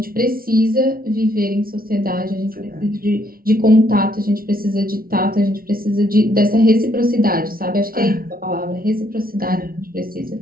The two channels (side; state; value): left; late; 0.43 ms